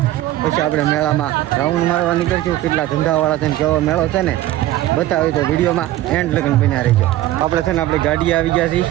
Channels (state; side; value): quieter; left; 14.9 dB